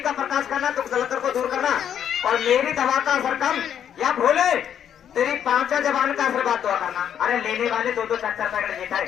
का प्रकाश करना, दुख दलकर को दूर करना, और मेरी दवा का असर कम या भोले तेरी 5 जबान का आशीर्वाद दुआ करना। अरे लेने वाले 2-2 4-4 पैकेट लेता है,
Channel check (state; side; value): quieter; right; 9.2 dB